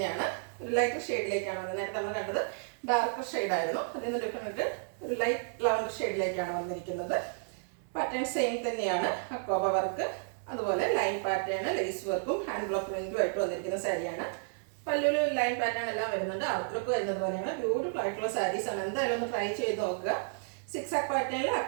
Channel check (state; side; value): silent; left; 56 dB below the other